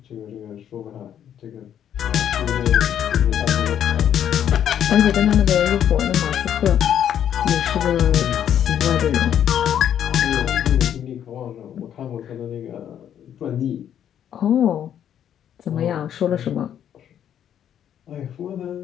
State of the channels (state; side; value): quieter; right; 9.8 dB